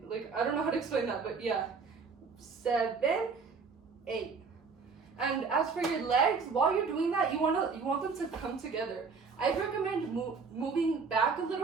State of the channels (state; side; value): quieter; left; 5.0 dB